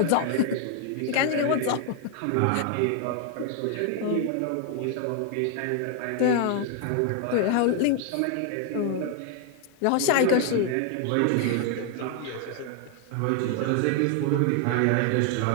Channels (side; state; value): both; different; correlation 0.00